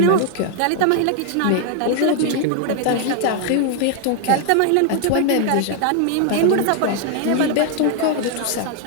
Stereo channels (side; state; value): both; different; correlation 0.00